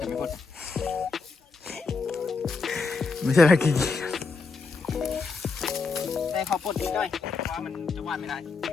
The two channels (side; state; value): right; quieter; 4.4 dB